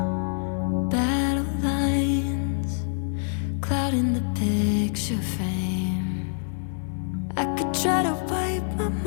Battle lines clouding the picture frame. I could try to wipe my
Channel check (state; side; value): silent; right; digital silence